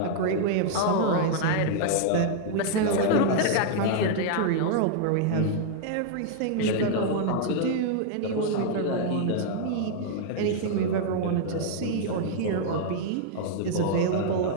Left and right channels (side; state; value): both; different; correlation -0.01